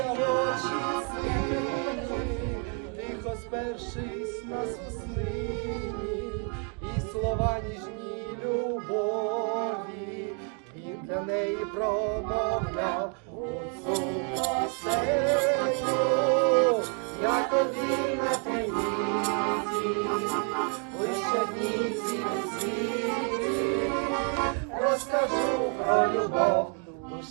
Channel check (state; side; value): quieter; left; 38.6 dB